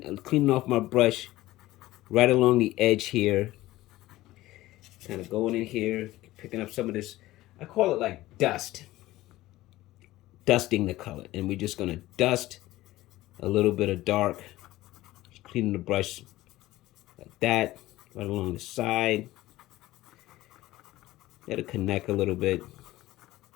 off my brush right along the edge here. Kind of going in here, picking up some of this. I call it like dust. Dusting the color. And we're just going to dust a little bit of dark. Just cleaning the brush like that, right along the side. Let it connect a little bit.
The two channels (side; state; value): right; quieter; 16.8 dB